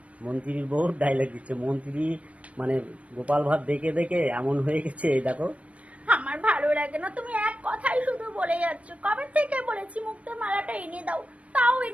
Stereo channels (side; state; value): left; late; 0.065 ms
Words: মন্ত্রীর বউ ডায়লগ দিচ্ছে। মন্ত্রী মানে গোপাল ভাঁড় দেখে দেখে এমন হয়ে গেছে, এই দেখো। আমার ভালো লাগে না, তুমি এক কথাই শুধু বলে যাচ্ছ। কবে থেকে বলেছি মুক্তোর মালাটা এনে দাও, তাও